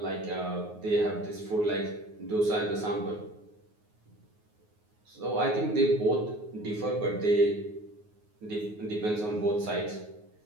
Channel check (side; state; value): left; late; 9.5 ms